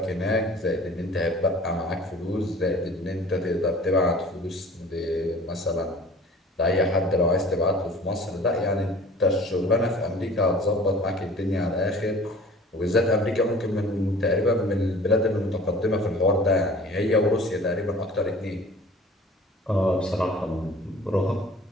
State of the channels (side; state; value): both; normal; correlation 0.47